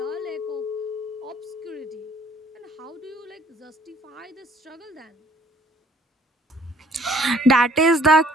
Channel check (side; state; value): both; normal; correlation 0.59